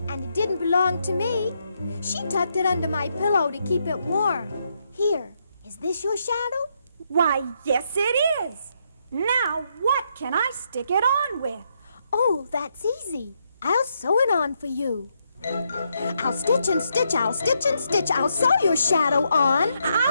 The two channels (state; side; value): inverted; both; correlation -0.78